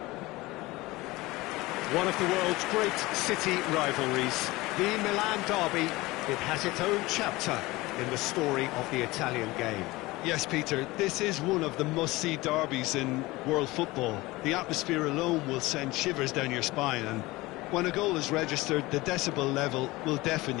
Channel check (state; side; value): quieter; right; 20.5 dB